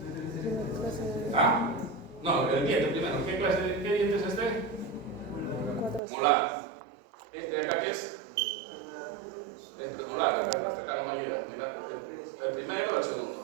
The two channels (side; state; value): left; drops out; at 6.0 s